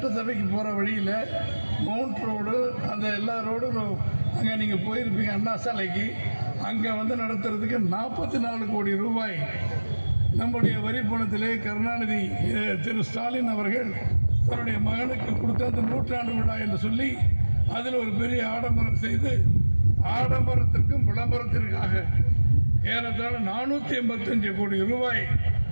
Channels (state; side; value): inverted; both; correlation -1.00